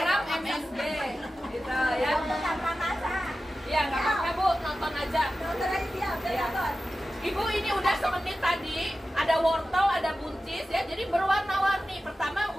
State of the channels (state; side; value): normal; both; correlation 0.94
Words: MSG. Gitu ya. tanpa masak. Iya, nggak apa-apa Bu, nonton aja. Dokter aja siap, Iya. nonton. Ibu ini udah semenit tadi, ada wortel, ada buncis ya, jadi berwarna-warni. Pertama